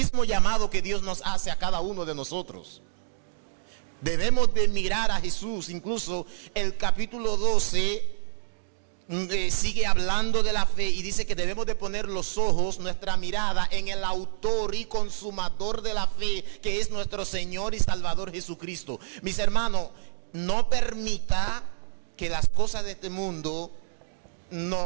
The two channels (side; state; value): left; silent; digital silence